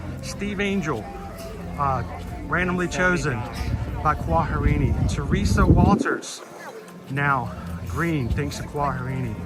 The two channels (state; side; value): identical; both; correlation 1.00